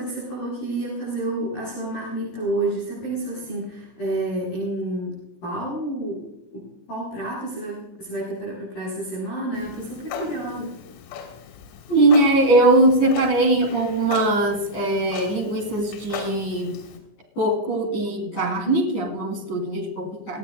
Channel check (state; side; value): late; right; 14 ms